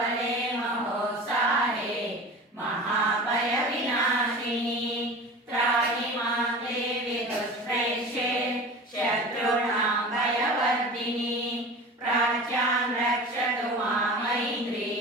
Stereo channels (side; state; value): both; normal; correlation 0.35